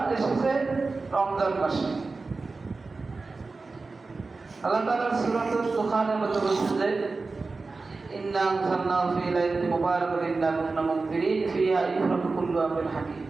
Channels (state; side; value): quieter; left; 3.9 dB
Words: এসেছে রমজান মাসে। আল্লাহ তাআলা সূরাতুল দুখানের মধ্যে বলছেন যে ইন্না আনজালনাহু ফী লাইলাতিন মুবারাকাতিন ইন্না কুন্না মুনজিরিন ফিহা ইফরাকু কুল্লু আমরিন হাকীম।